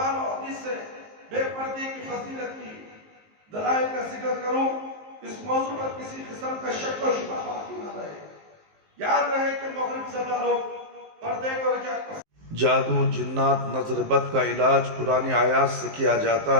اور حدیث سے بے پردے کی فضیلت کی دلائل کا ذکر کروں. اس موضوع پر کسی قسم کا شک و شبہ باقی نہ رہے. یاد رہے کہ مغرب زدہ لوگ پردے کو رجعت. جادو، جنات، نظر بد کا علاج قرآن آیات سے کیا جاتا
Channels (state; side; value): late; left; 19 ms